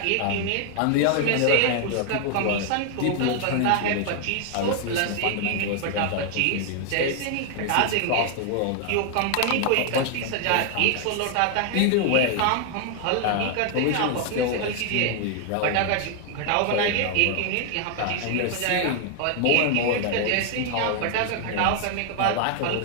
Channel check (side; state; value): both; different; correlation 0.00